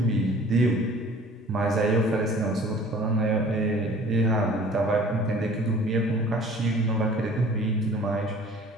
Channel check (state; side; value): normal; both; correlation 0.49